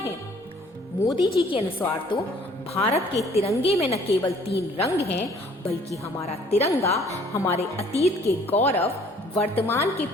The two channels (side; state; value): both; normal; correlation 0.57